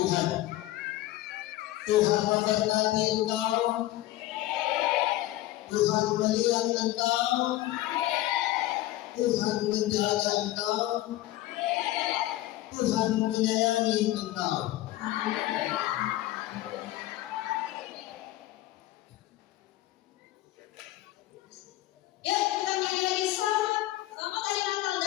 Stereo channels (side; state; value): right; quieter; 15.7 dB